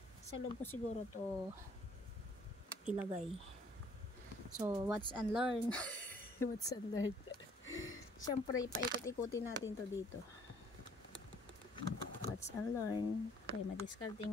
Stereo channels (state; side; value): normal; both; correlation 0.60